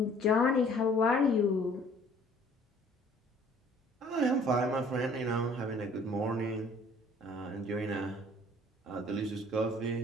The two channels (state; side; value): normal; both; correlation 0.55